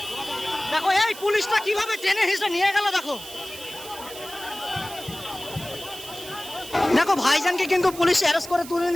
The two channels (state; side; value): noise; right; hiss, 14 dB below the sound